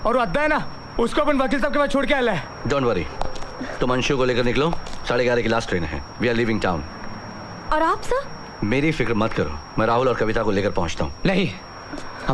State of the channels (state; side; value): identical; both; correlation 1.00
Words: और अद्दा है ना, उसको अपन वकील साहब के पास छोड़ के आया है। डोंट वरी, तुम अंशु को लेकर निकलो, 11:30 की लास्ट ट्रेन है। We are living town. और आप सर? मेरी फिक्र मत करो, मैं राहुल और कविता को लेकर पहुंचता हूँ। नहीं,